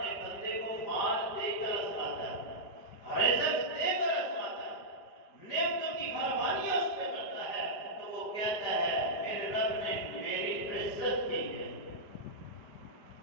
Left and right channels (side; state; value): right; late; 5.0 ms